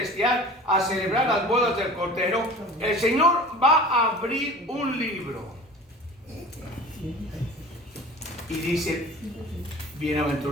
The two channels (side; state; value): both; normal; correlation 0.41